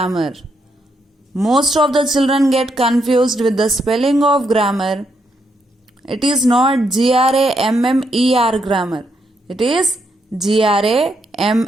Most of the children get confused with the spelling of grammar. It is not GRAMMER grammar. It is GRAMMAR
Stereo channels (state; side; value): normal; both; correlation 0.78